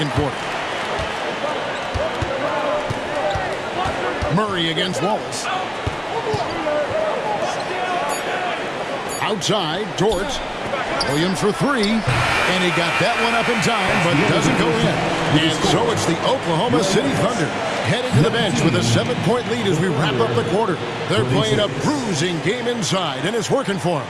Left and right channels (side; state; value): both; identical; correlation 1.00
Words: quarter. Murray against Wallace. Outside, Dort. Williams for three, and he got that one up in time, but doesn't go in. And so it's the Oklahoma City Thunder heading to the bench with a 7-point lead as we wrap up the quarter. They're playing a bruising game inside, and it's working for them.